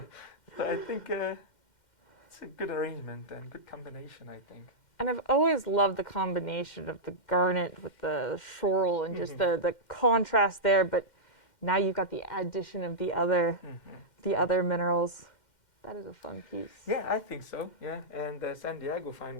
I think it's a good arrangement and good combination, I think. And I've always loved the combination of the garnet with the schorl and just the contrast there, but now you've got the addition of the other minerals. That is a fun piece. Yeah, I think so. Yeah, and San Diego find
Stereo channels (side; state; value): right; late; 2.1 ms